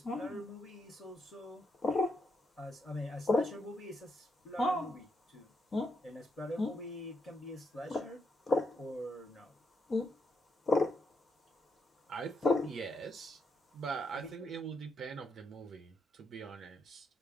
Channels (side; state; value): both; normal; correlation 0.80